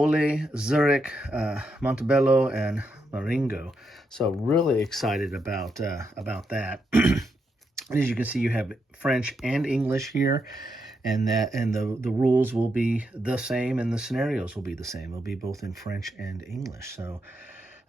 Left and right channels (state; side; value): normal; both; correlation 0.81